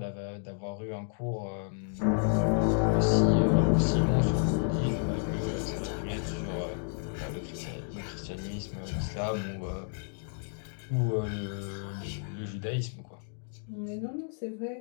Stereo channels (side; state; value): right; silent; 57 dB below the other